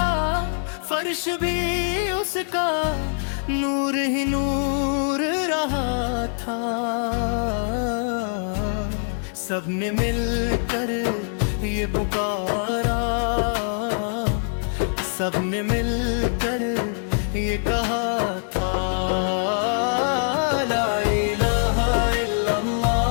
فرش بھی اس کا نور ہی نور رہا تھا سب نے مل کر یہ پکارا سب نے مل کر یہ کہا تھا لا الہ الا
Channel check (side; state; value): right; silent; 62 dB below the other